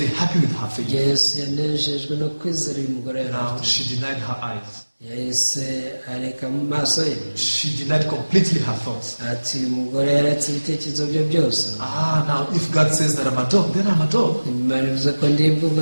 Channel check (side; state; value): both; inverted; correlation -1.00